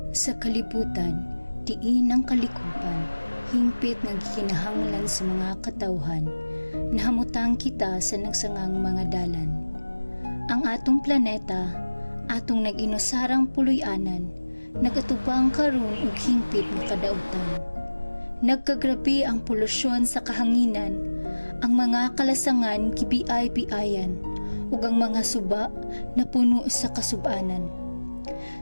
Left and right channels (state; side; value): inverted; both; correlation -1.00